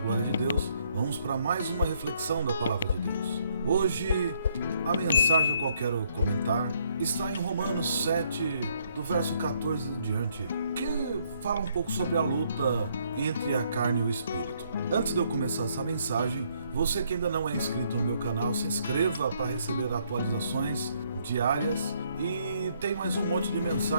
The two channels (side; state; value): both; inverted; correlation -0.70